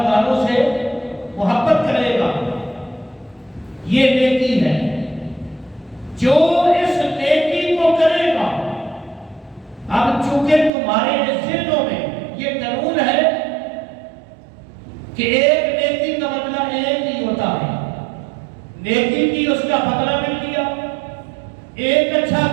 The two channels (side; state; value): left; drops out; at 10.7 s